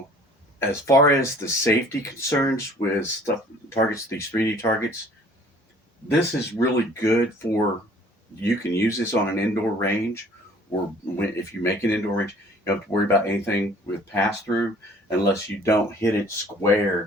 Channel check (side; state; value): both; normal; correlation 0.53